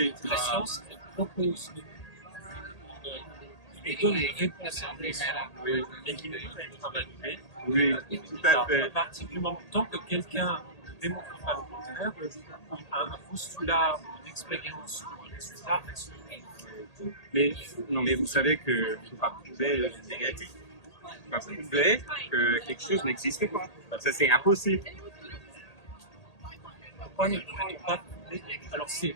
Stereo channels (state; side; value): late; right; 1.8 ms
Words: La science elle propose et donne une réponse à un besoin, mais qui ne peut pas être invalidé. Oui, tout à Alors, fait. à partir du moment tant que quelqu'un ne démontre pas le contraire, un postulat, une expérience ou un résultat reste. Mais, non, mais vous savez que je ne peux pas prouver le négatif. Je ne peux pas prouver que quelque chose n'existe pas. Ça, c'est impossible. Pourquoi ne pourrait-on pas prouver? Alors, c'est